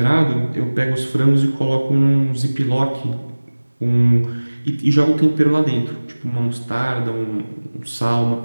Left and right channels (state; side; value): inverted; both; correlation -1.00